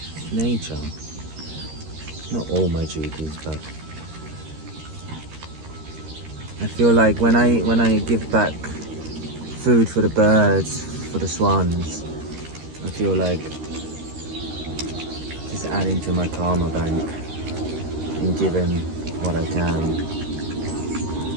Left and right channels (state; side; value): late; left; 13 ms